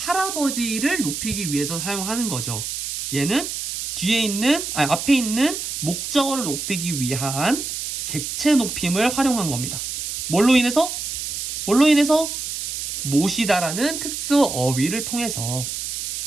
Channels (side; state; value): right; noise; hiss, 4 dB below the sound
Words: 높이기 위해서 사용하는 거죠. 얘는 앞에 있는 목적어를 높이기 위한 객체 높임을 활용한 겁니다. 뭘로 인해서? 모시다라는 특수 어휘를 통해서.